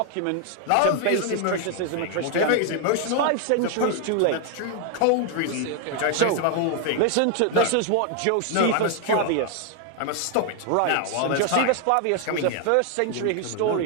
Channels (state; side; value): different; both; correlation 0.00